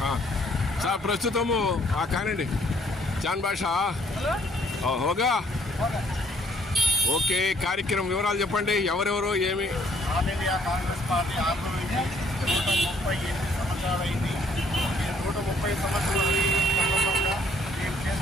సార్ ప్రస్తుతము కానండి జాన్ భాషా హోగా ఓకే. కార్యక్రమం వివరాలు చెప్పండి. ఎవరెవరు ఏమి? All India Congress party Andhra Pradesh 138 సంవత్సరాలైంది. 130 సంవత్సరాల సందర్భంగా మేము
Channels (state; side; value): normal; both; correlation 0.63